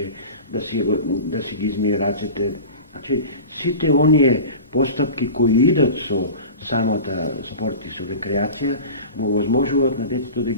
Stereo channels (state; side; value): inverted; both; correlation -0.34